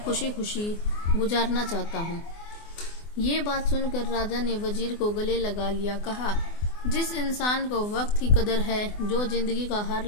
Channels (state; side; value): late; right; 24 ms